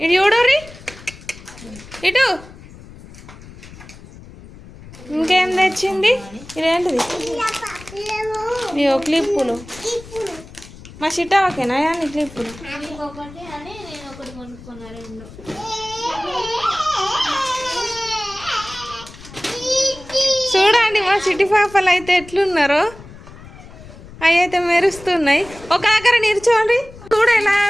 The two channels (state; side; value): noise; left; rumble, 18 dB below the sound